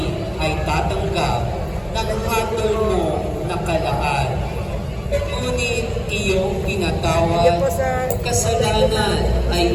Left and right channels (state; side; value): identical; both; correlation 1.00